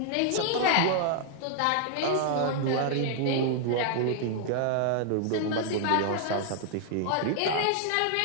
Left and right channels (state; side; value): different; both; correlation 0.00